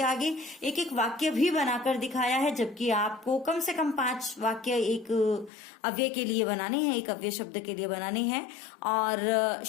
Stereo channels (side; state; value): right; drops out; at 5.5 s